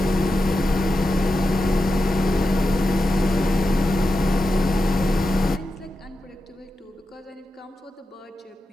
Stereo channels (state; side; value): normal; both; correlation 0.90